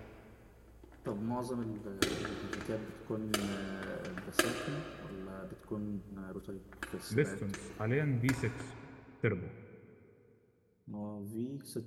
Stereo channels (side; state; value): both; identical; correlation 1.00